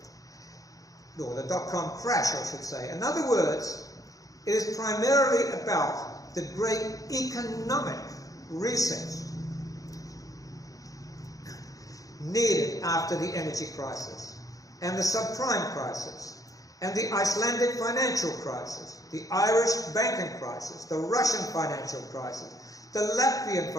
or the dot-com crash, I should say. In other words, it is primarily about the great economic reset needed after the energy crisis, and the subprime crisis, and the Icelandic financial crisis, the Irish banking crisis, the Russian financial crisis, the Latvian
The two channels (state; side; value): late; right; 0.17 ms